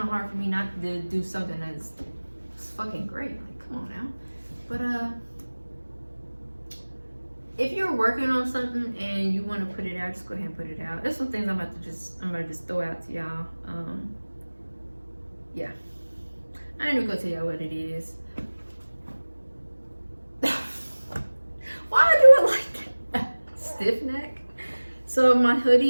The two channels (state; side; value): inverted; both; correlation -1.00